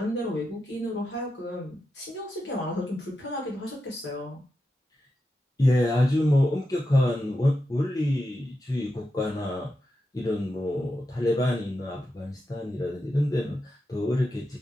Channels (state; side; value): normal; both; correlation 0.88